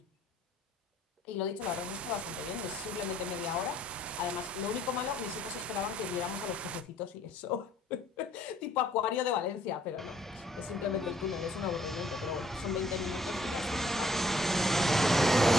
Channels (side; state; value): both; normal; correlation 0.63